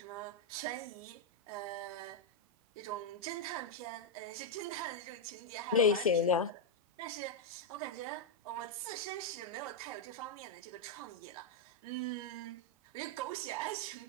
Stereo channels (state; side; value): normal; both; correlation -0.02